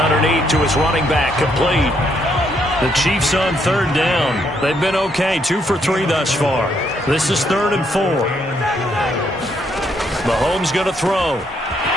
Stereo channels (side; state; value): both; normal; correlation 0.73